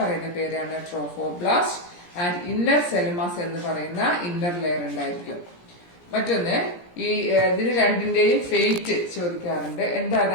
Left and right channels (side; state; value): right; late; 17 ms